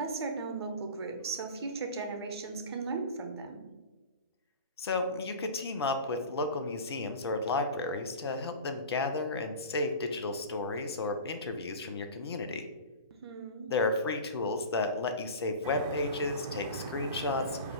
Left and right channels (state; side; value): inverted; both; correlation -0.34